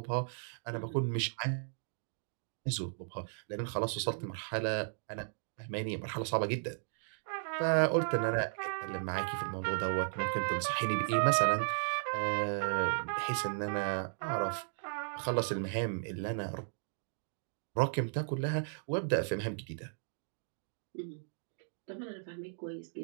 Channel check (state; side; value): silent; left; digital silence